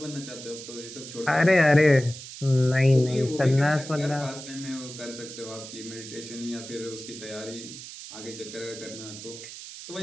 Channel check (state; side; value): noise; right; hiss, 12 dB below the sound